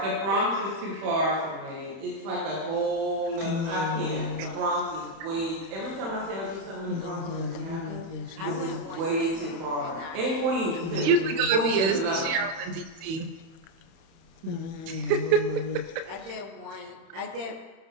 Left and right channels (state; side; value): late; left; 31 ms